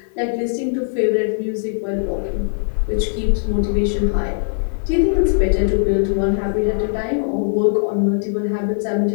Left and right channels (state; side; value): silent; right; 57 dB below the other